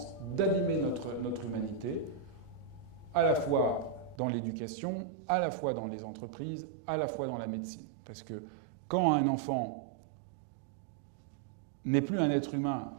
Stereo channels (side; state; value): left; drops out; at 4.2 s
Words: d'abîmer notre humanité, à la fois dans l'éducation, à la fois dans les entreprises, à la fois dans la médecine. Parce que quand un enfant n'est plus un être humain,